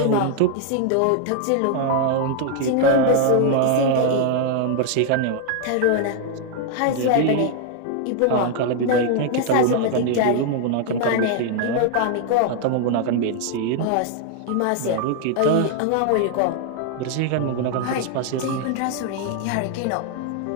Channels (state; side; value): different; both; correlation 0.00